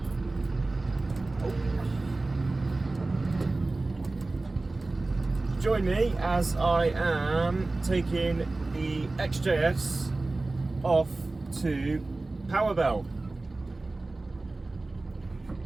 Join me as I am taking the XJS off to Powerbell,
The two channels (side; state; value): left; quieter; 3.2 dB